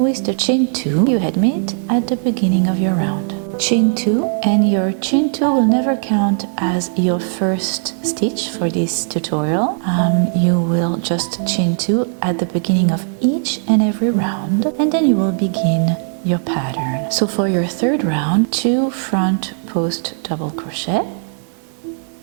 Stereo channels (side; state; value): left; silent; 67 dB below the other